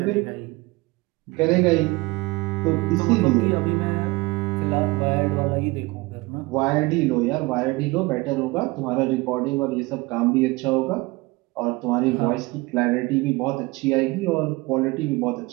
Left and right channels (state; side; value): quieter; left; 22.7 dB